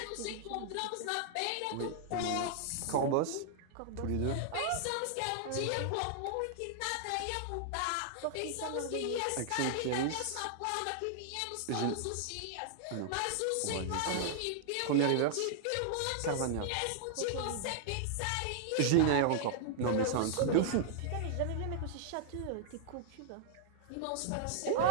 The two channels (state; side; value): different; both; correlation -0.01